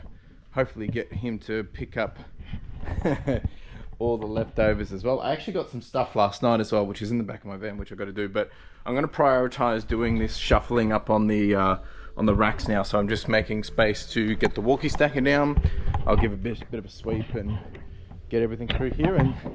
hopefully get him to pick up all the leftovers as well. I actually got some stuff last night as well, which is in the back of my van, which I've got to do, but I'm going to prioritize doing this shuffling up on the racks now. So I'm just making space to get the walkie stacker down. I'll give a bit of a sweep and get everything through here, and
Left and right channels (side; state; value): both; identical; correlation 1.00